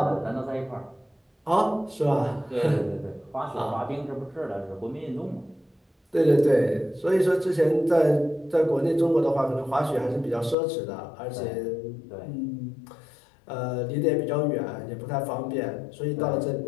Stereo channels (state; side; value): drops out; right; at 10.6 s